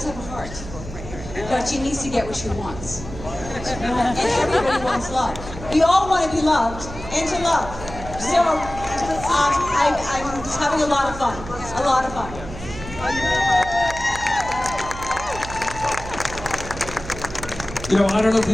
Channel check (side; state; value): right; noise; hum, 12 dB below the sound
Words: have a heart, but she needs to get what she wants. And everybody wants love. We all want to be loved and to love. So I'm just having a lot of fun. A lot of fun. You know, I don't know if